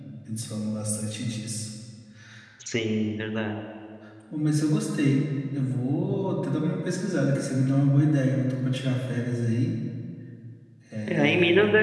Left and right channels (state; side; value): identical; both; correlation 1.00